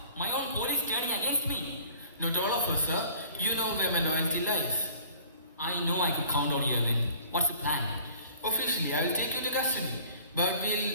My own police turning against me? Not all of us, sir. You know where my loyalty lies. I know I could count on you, Arvind. What's the plan? Officially, I will take you to custody. But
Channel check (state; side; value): inverted; both; correlation -0.49